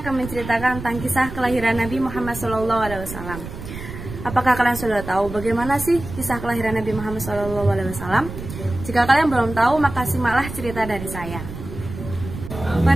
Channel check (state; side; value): noise; right; rumble, 10 dB below the sound